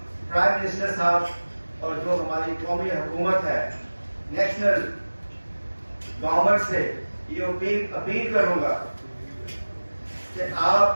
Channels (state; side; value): inverted; both; correlation -1.00